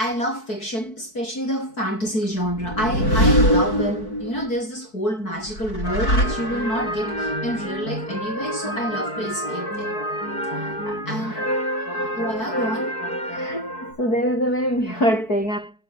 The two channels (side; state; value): right; late; 4.6 ms